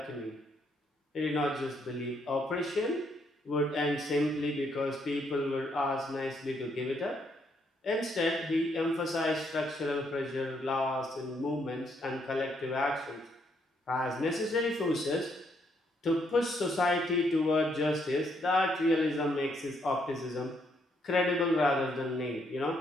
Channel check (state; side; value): normal; both; correlation 0.73